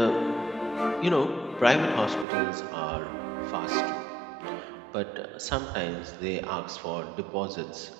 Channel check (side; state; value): left; drops out; at 2.2 s